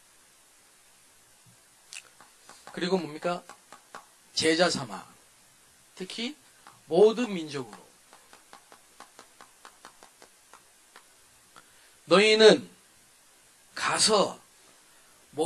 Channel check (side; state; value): both; identical; correlation 1.00